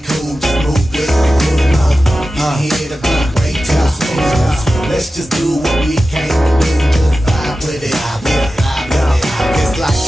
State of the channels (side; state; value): both; normal; correlation 0.94